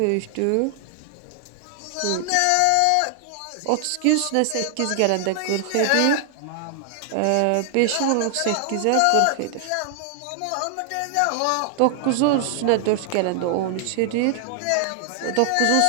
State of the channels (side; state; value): both; different; correlation 0.00